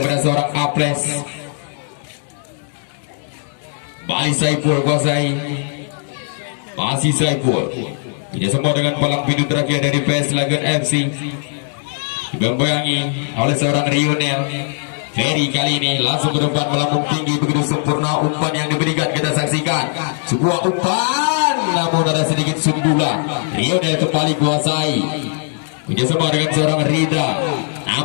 kepada seorang Aples. Balik Saiful kuasai. Masih Saiful. Kerjasama dengan palang pintu terakhir dari PS Lagan FC. Dibayang-bayangi oleh seorang Rionel. Ferry kali ini langsung ke depan melambung tinggi begitu sempurna umpan yang diberikan. Kita saksikan sebuah umpan, namun ada sedikit sundulan. Rionel kembali kuasai. Kerjasama dengan seorang Rida,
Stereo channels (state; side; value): silent; right; 59 dB below the other